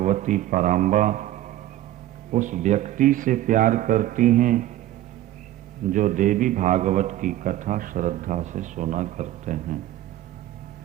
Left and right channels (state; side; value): quieter; left; 14.2 dB